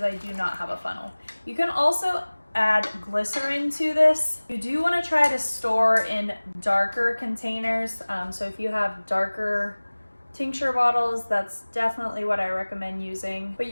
I do not have a funnel. You can also add glycerin to this. You do want to try to store in darker containers. So if you have darker tincture bottles, that's definitely what I recommend using. But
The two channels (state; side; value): inverted; both; correlation -1.00